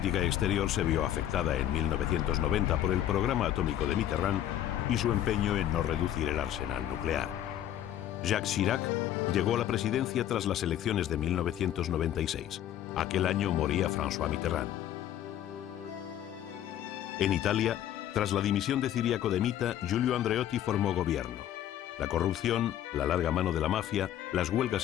exterior se vio afectada en 1990 por el programa atómico de Mitterrand y su empeño en no reducir el arsenal nuclear. Jacques Chirac llegó a la presidencia tras las elecciones de 1996. Aquel año moría François Mitterrand. En Italia, tras la dimisión de Ciriaco de Mita, Giulio Andreotti formó gobierno. La corrupción, la larga mano de la mafia, las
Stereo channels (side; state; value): right; quieter; 11.5 dB